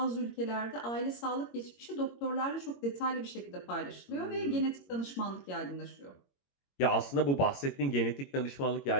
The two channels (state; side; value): late; right; 21 ms